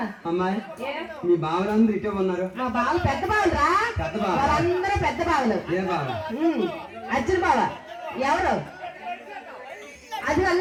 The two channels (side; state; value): both; identical; correlation 1.00